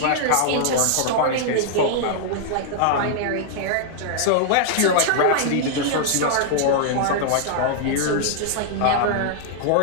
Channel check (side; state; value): both; different; correlation -0.01